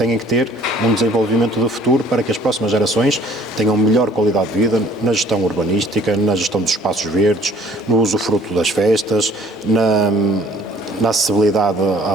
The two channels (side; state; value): both; normal; correlation 0.54